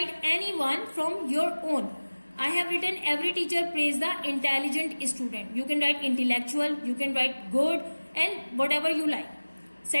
any one from your own. I have written every teacher praise the intelligent student. You can write intellectual, you can write good and whatever you like.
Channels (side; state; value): both; inverted; correlation -1.00